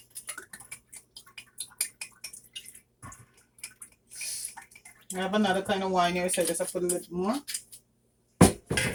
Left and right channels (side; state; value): both; identical; correlation 1.00